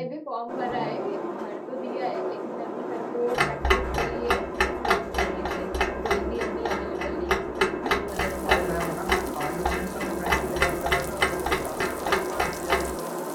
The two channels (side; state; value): both; identical; correlation 1.00